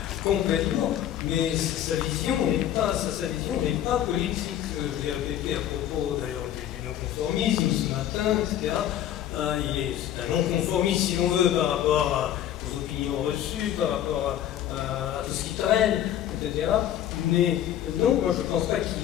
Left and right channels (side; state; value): right; quieter; 11.2 dB